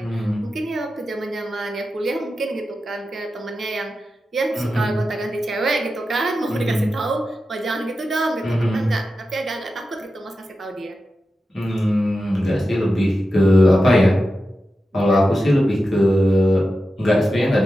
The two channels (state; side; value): normal; both; correlation 0.91